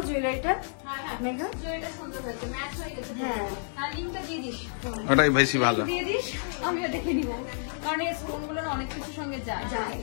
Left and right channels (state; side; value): silent; right; digital silence